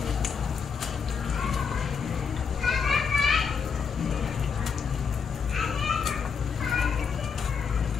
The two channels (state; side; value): quieter; right; 6.1 dB